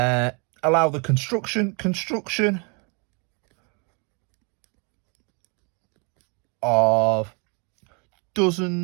the construction of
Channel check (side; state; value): left; quieter; 33.9 dB